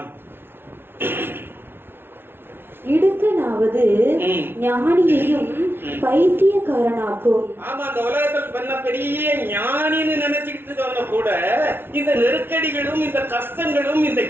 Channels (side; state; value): left; late; 0.11 ms